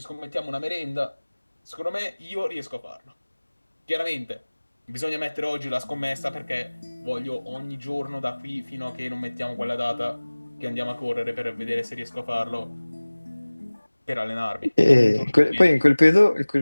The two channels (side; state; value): both; inverted; correlation -1.00